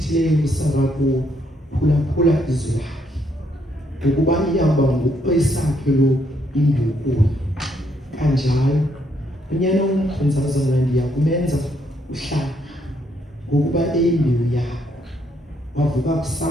uSara kuwo phulaphula izwi lakhe ukuba iyaba ngokwesakhe lo imbukulo kanjalo unyana womkhonzazana ndiyakumenza uhlanga ngokuba eyimbewu yakho wavuka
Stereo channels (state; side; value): normal; both; correlation 0.73